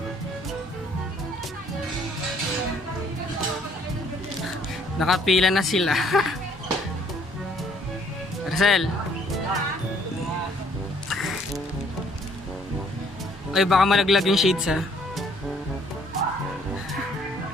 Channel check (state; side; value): normal; both; correlation 0.62